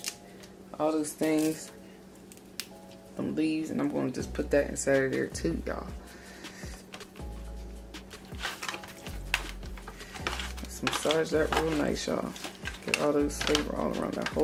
all those things, some leaves, and I'm going to just put that inside of there too, y'all. massage that real nice, y'all. Get all those flavor all around that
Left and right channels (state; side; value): identical; both; correlation 1.00